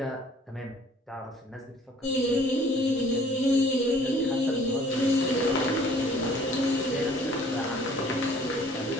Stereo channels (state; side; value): normal; both; correlation 0.55